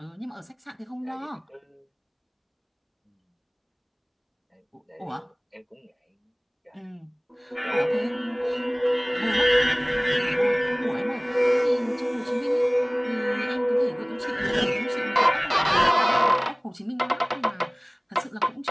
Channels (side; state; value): both; identical; correlation 1.00